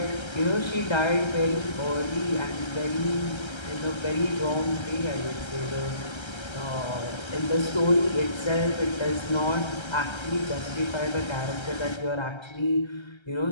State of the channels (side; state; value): right; late; 1.3 ms